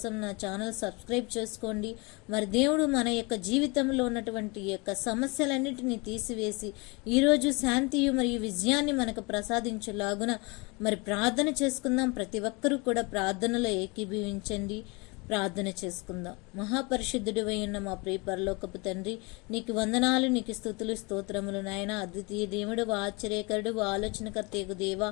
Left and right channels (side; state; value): right; quieter; 28.0 dB